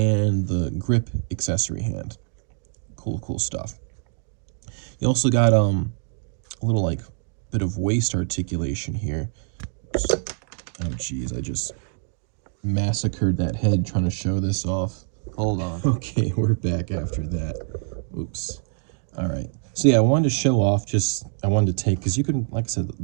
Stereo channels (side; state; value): left; silent; 56 dB below the other